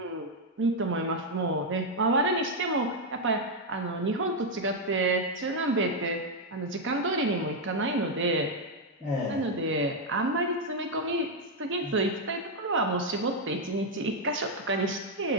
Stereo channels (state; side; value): normal; both; correlation 0.01